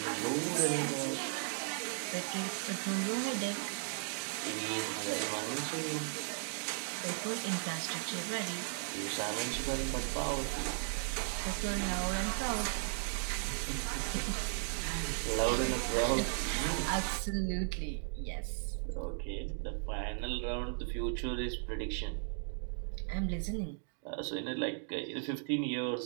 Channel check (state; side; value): silent; left; digital silence